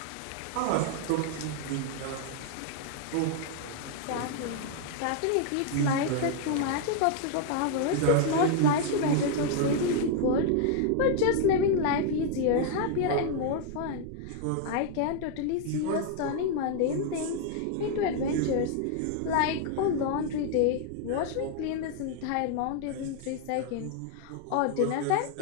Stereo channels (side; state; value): both; different; correlation 0.00